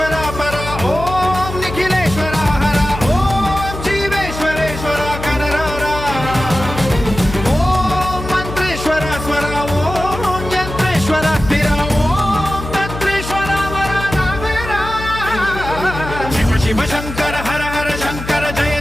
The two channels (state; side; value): noise; left; hum, 9 dB below the sound